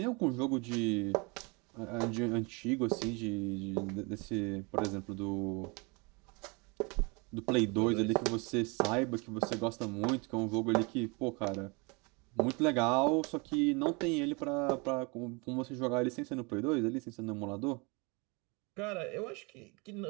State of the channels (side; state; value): left; quieter; 29.3 dB